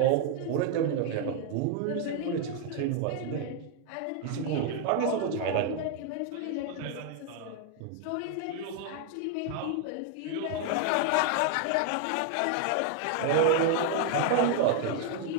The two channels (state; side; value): different; both; correlation 0.00